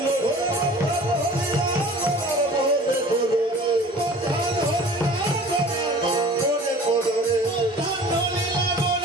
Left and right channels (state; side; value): normal; both; correlation 0.45